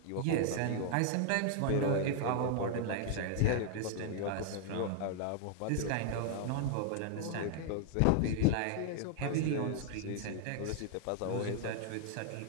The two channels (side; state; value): both; different; correlation 0.00